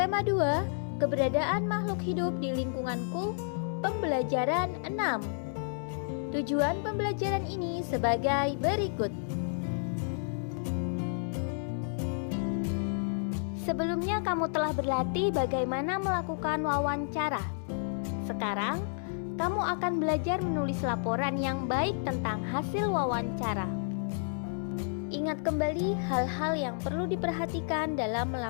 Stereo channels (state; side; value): silent; right; digital silence